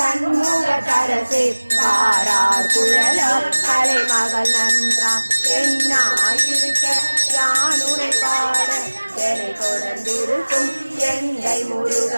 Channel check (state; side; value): inverted; both; correlation -1.00